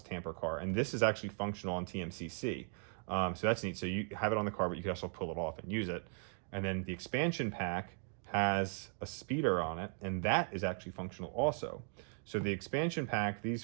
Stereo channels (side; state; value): left; silent; 53 dB below the other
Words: tamper car, and this is actually functional on TMCC. So that's neat. So you have it on the car, but you can also pull it off and use it. And then the expansion pack has a speeder on it, and that is actually functional also. So the expansion pack, these